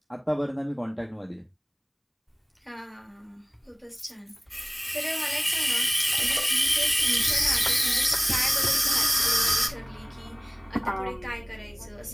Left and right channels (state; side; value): identical; both; correlation 1.00